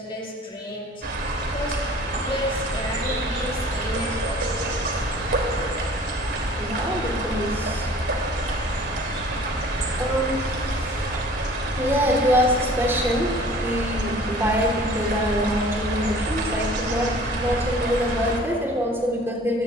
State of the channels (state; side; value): normal; both; correlation 0.49